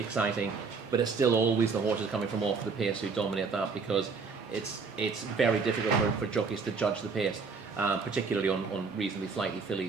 but it's still always the horses coming from off the pace who dominate that, because it's very difficult for jockeys to judge the pace, particularly on reasonably flighty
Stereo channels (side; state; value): left; quieter; 4.9 dB